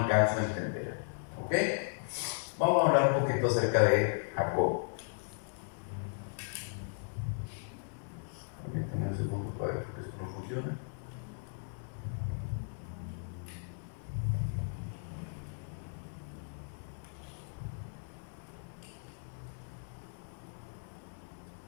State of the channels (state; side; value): silent; right; digital silence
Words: a entender. ¿Ok? Vamos a hablar un poquito acerca de Jacob. Permítame un segundo para ver porque esto no funciona.